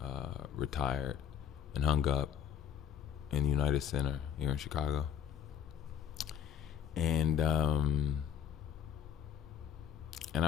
retired and hung up in the United Center here in Chicago. And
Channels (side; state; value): right; quieter; 8.8 dB